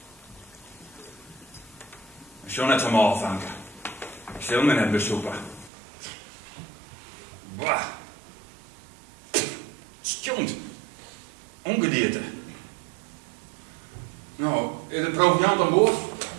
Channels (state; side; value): drops out; left; at 5.7 s